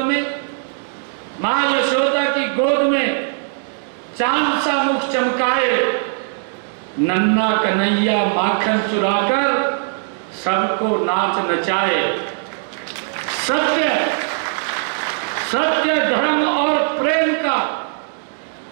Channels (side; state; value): left; silent; 65 dB below the other